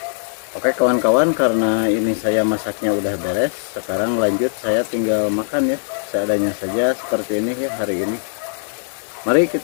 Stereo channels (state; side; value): silent; right; digital silence